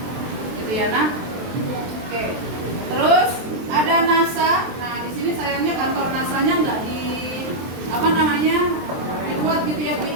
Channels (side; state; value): left; late; 23 ms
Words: Gitu ya, nah. Oke. Terus ada NASA. Nah, di sini sayangnya kantor NASA-nya nggak dibuat gitu ya